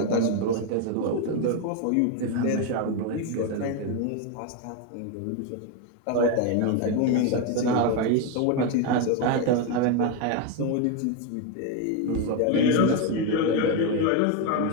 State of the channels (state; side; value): different; both; correlation 0.02